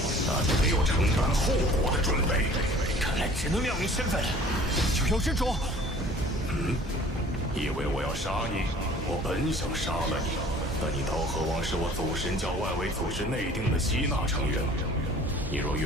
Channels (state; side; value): normal; both; correlation 0.49